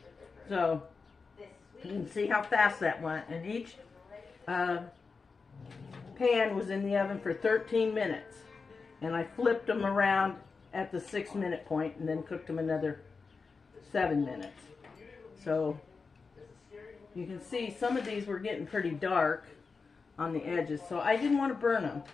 So, you can see how fast that went. And each pan was in the oven for 13 minutes. And I flipped them around at the 6-minute point and then cooked them another 7 minutes. So, you can see some of these were getting pretty dark on the edges. So, I didn't want to burn them.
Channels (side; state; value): right; quieter; 4.7 dB